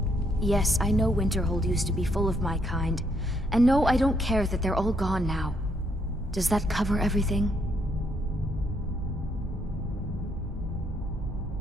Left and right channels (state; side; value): normal; both; correlation 0.73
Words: Yes, I know Winterhold used to be full of my kind, and no, I don't care that they're all gone now. Does that cover everything?